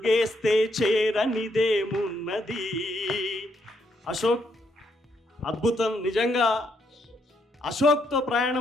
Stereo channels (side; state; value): both; normal; correlation 0.76